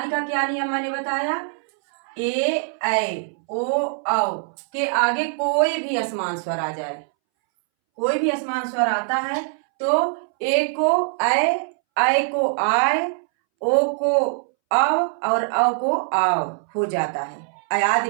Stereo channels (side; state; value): left; silent; 63 dB below the other